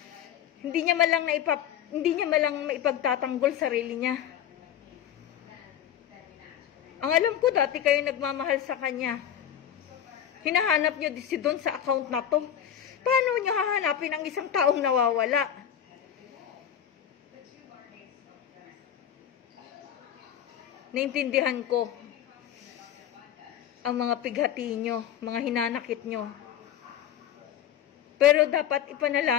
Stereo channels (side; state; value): right; quieter; 10.0 dB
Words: hindi niya malang maipagtatanggol sarili niya. Ang alam ko dati kayo nagmamahal sa kanya. Hinahanap niyo si Don sa account na to. Paano niyo hahanapin ang isang taong nawawala? Naintindihan ko ang mga pighati nyo, mga hinanakit nyo. Pero dapat